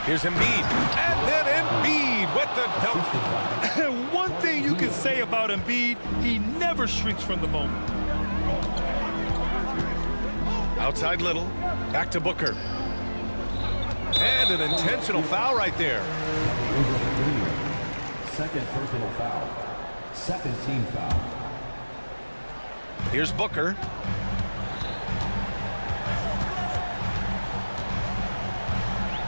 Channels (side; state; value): both; inverted; correlation -1.00